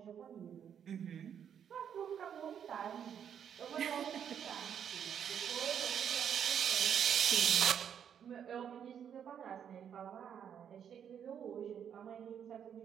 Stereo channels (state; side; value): quieter; left; 8.5 dB